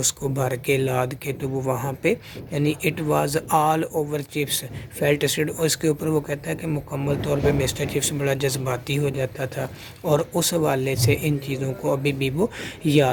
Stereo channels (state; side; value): identical; both; correlation 1.00